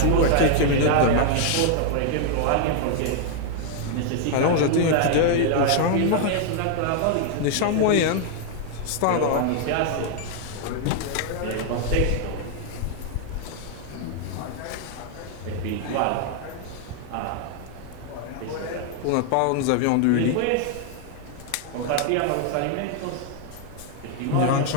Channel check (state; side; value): different; both; correlation 0.00